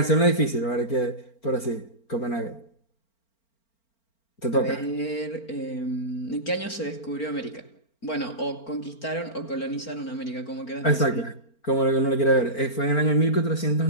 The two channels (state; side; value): late; right; 4.4 ms